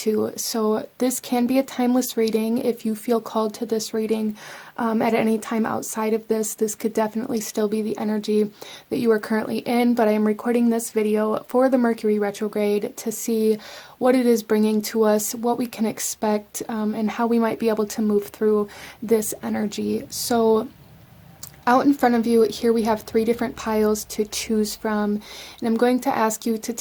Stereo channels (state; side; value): identical; both; correlation 1.00